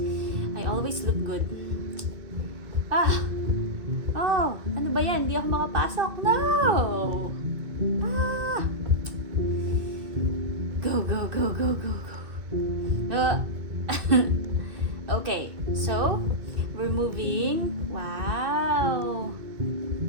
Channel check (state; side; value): late; left; 2.1 ms